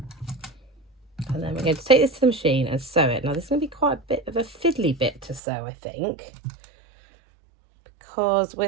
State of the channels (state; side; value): drops out; left; at 5.4 s